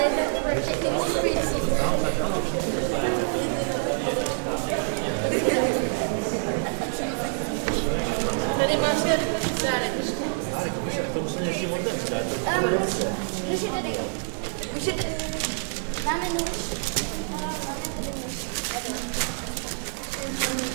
Tady máš ten dárek. Nůž je tady. Máme nůž. Máme tady nůž.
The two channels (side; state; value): left; silent; digital silence